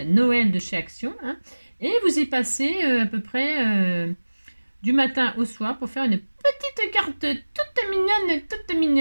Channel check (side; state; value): both; inverted; correlation -1.00